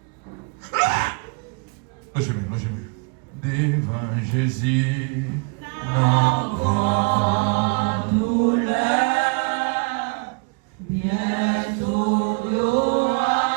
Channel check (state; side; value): quieter; left; 33.2 dB